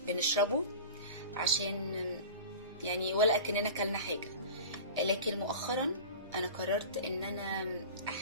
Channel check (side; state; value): both; inverted; correlation -0.35